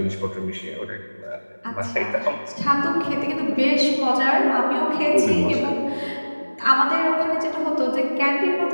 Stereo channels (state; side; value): inverted; both; correlation -1.00